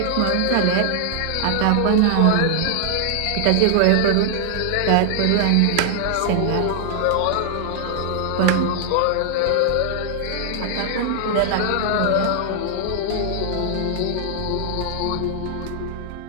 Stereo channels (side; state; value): both; different; correlation 0.00